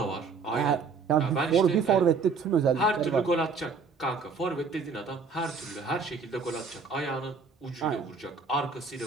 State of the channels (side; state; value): left; quieter; 4.9 dB